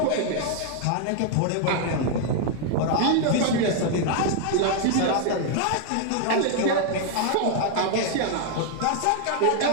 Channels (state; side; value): different; both; correlation 0.00